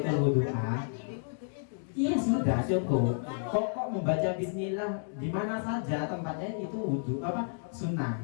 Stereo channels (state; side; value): silent; right; digital silence